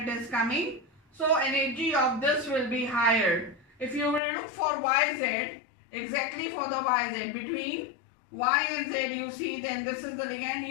it is coming. So energy of this will be higher. If you will look for YZ, exactly for the YZ, between Y and Z you see, then this is the ligand.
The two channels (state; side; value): drops out; right; at 4.2 s